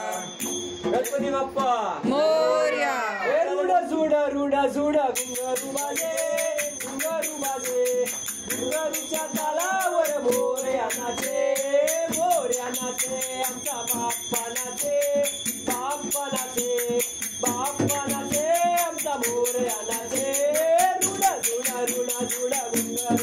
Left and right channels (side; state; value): both; identical; correlation 1.00